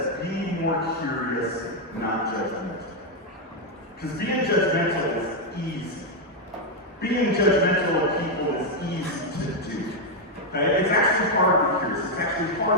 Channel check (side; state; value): both; normal; correlation 0.01